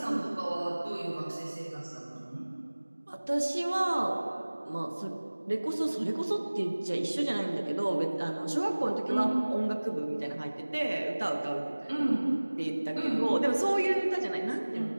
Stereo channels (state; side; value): inverted; both; correlation -1.00